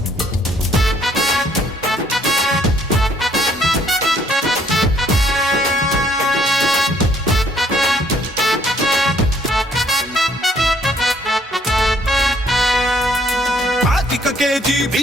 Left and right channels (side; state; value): both; normal; correlation 0.64